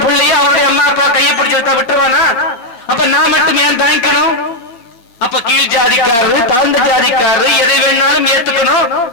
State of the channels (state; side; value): late; right; 8.5 ms